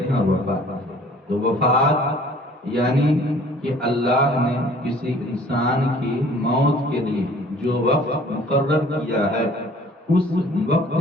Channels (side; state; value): both; normal; correlation 0.52